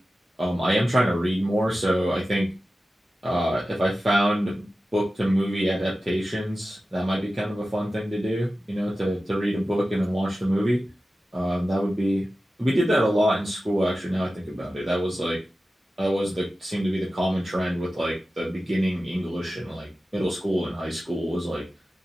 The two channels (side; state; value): both; normal; correlation 0.94